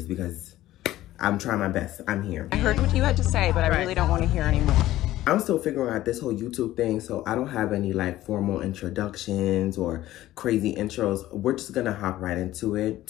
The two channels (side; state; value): right; quieter; 15.0 dB